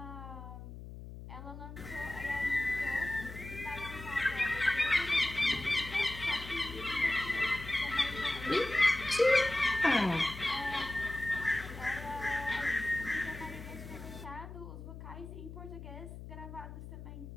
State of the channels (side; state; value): left; noise; hum, 12 dB below the sound